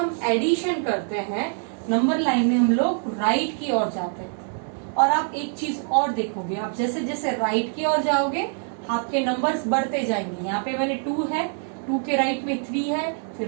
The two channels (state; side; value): silent; left; 56 dB below the other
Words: एडिशन करते हैं नंबर लाइन में हम लोग राइट की ओर जाते हैं. और आप एक चीज और देखोगे, आप जैसे जैसे राइट की ओर जाओगे आपके नंबर्स बढ़ते जाएंगे. यहाँ पे मैंने 2 है, 2 के राइट में 3 है, फिर